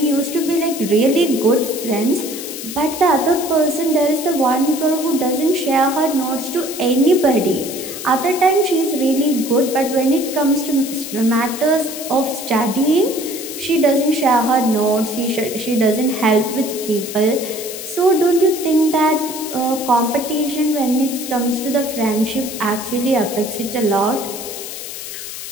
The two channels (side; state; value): left; noise; hiss, 9 dB below the sound